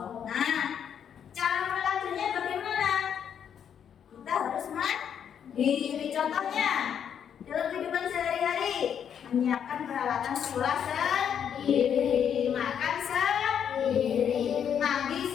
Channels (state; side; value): quieter; right; 8.4 dB